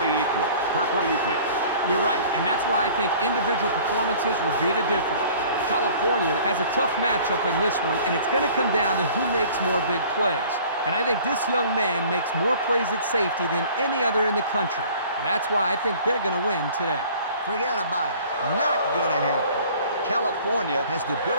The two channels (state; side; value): inverted; both; correlation -0.49